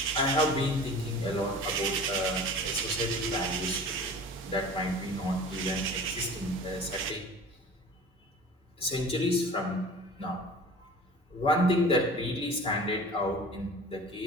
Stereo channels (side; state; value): both; normal; correlation 0.41